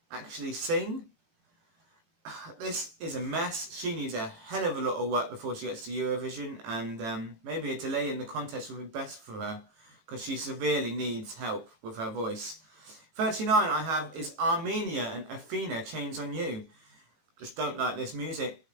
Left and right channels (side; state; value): left; late; 19 ms